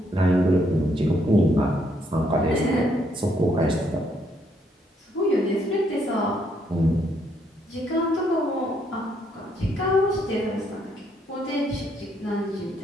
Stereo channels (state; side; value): normal; both; correlation 0.72